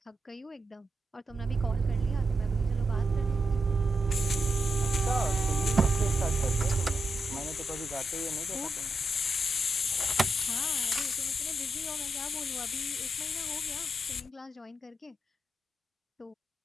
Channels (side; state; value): both; normal; correlation 0.85